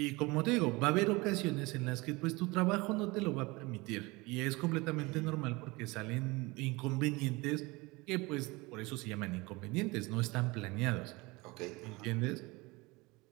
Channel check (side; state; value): left; quieter; 23.8 dB